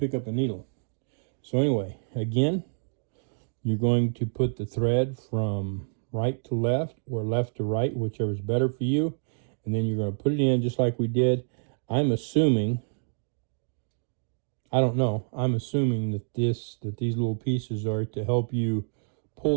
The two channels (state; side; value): silent; left; digital silence